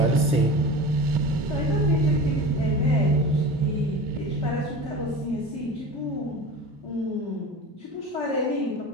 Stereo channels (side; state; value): both; normal; correlation 0.33